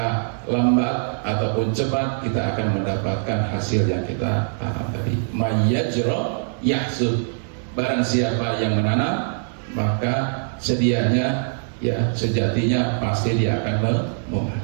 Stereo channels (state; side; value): silent; left; digital silence